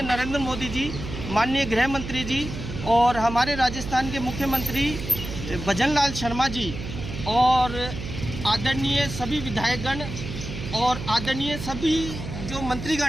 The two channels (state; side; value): noise; right; hum, 8 dB below the sound